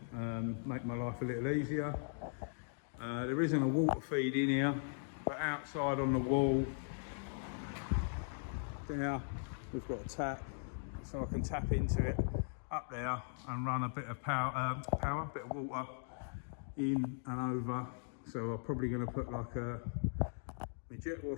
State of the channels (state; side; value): silent; right; digital silence